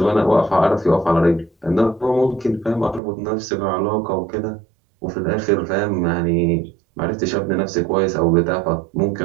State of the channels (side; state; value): left; drops out; at 3.0 s